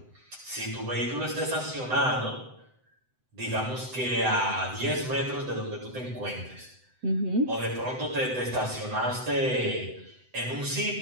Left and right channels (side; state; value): left; late; 7.9 ms